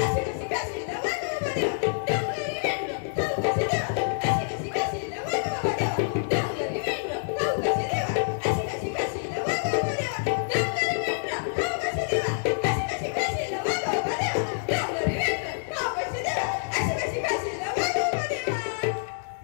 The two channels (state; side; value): silent; right; digital silence